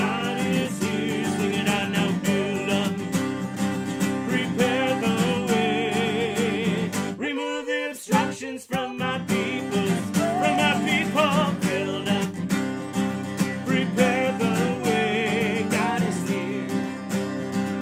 is here. Sing it out now. Build up, prepare the way. Remove the obstructions from my people. From my people. Build up, prepare the way. God is here.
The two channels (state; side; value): identical; both; correlation 1.00